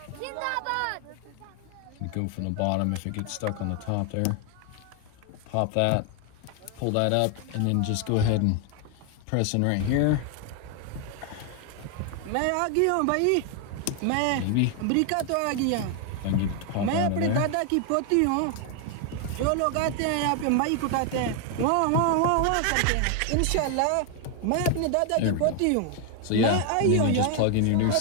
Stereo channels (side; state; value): both; different; correlation 0.00